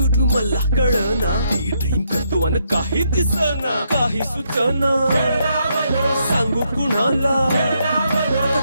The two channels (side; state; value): both; inverted; correlation -0.76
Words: मला कळना ते ड्रीम करतो आणि काही दिसना काही सुचना सांगू कुणाला